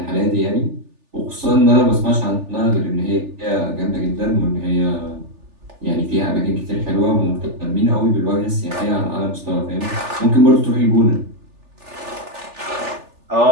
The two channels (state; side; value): late; left; 3.4 ms